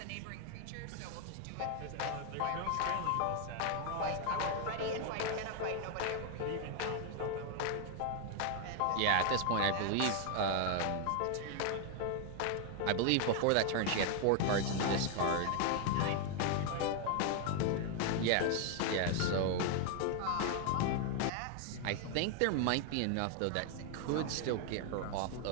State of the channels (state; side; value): different; both; correlation 0.00